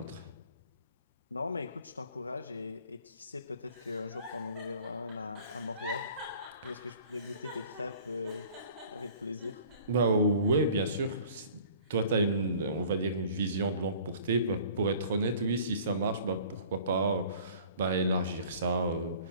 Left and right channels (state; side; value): inverted; both; correlation -0.49